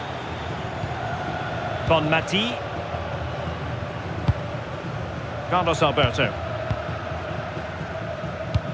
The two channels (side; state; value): both; identical; correlation 1.00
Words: Bonmati. Carlos Alberto.